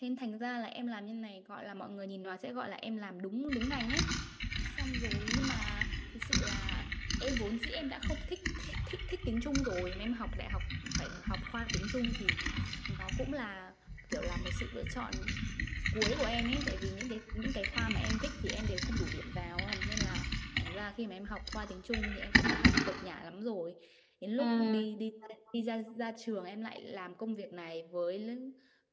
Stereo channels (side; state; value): both; identical; correlation 1.00